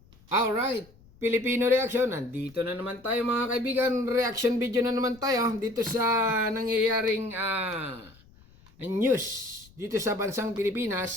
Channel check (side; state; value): left; noise; rumble, 26 dB below the sound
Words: Alright, Filipino Reaction. Nandito na naman tayo mga kaibigan. Reaction video na naman tayo dito sa nangyayaring news dito sa bansang